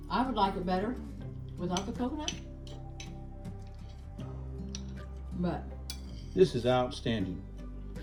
I would like it better without the coconut. But This is outstanding.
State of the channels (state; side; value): identical; both; correlation 1.00